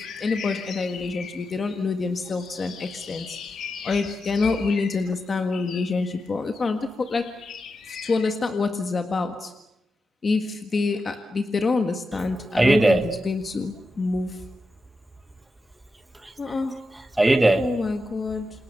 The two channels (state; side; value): normal; both; correlation 0.89